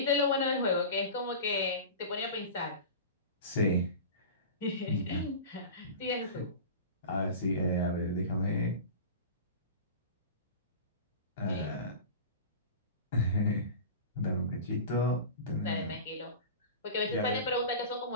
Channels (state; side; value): inverted; both; correlation -0.32